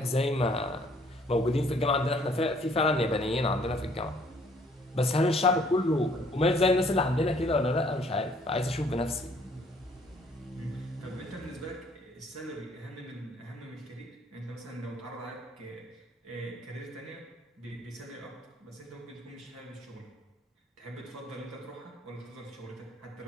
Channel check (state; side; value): normal; both; correlation 0.61